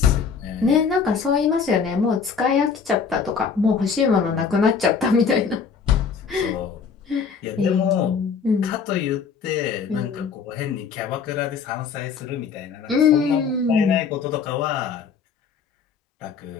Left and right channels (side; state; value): right; quieter; 5.9 dB